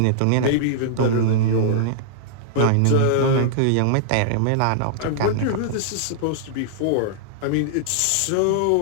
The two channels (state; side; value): different; both; correlation -0.01